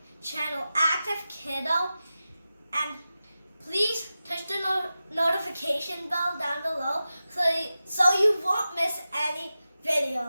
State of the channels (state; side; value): inverted; both; correlation -0.94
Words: channel, Active Kiddo. And please touch the notification bell down below so you won't miss any